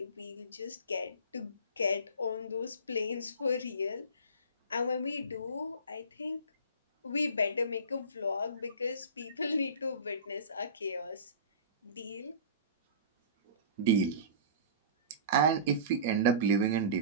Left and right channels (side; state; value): both; inverted; correlation -0.35